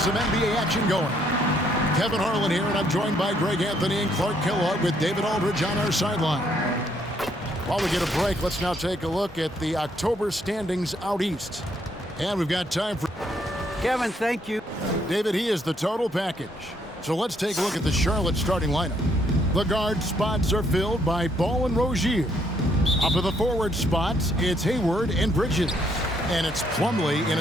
NBA action going. Kevin Harlan here, and I'm joined by Greg Anthony and Clark Kellogg with David Aldridge on our sideline. While we get a break, let's now take a look at the October standings out east. And we've got time for Kevin, thank you. David. He is the total package. So let's take a look at the Charlotte starting lineup. The guard spots are filled by Ball and Rozier. Up at the forward spots, it's Hayward and Bridges. And it's Plumlee in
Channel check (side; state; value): both; normal; correlation 0.70